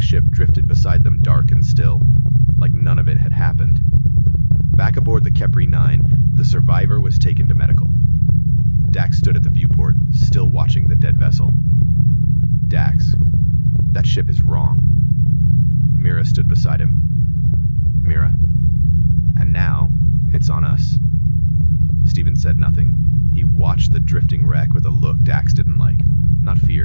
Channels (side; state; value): both; inverted; correlation -1.00